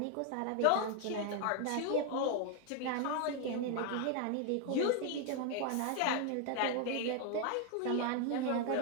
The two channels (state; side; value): different; both; correlation 0.00